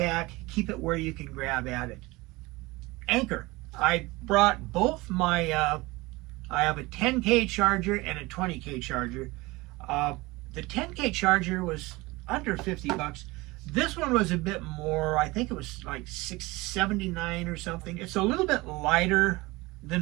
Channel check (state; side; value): quieter; left; 22.0 dB